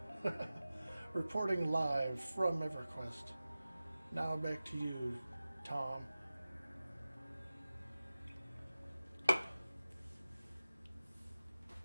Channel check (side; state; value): both; inverted; correlation -0.97